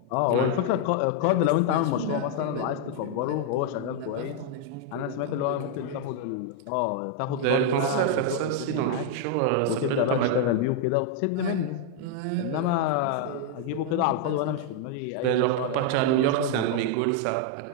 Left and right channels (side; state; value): both; different; correlation 0.00